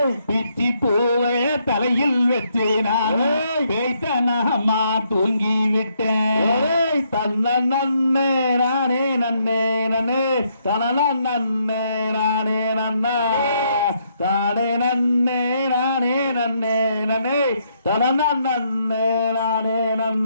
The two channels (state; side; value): inverted; both; correlation -0.74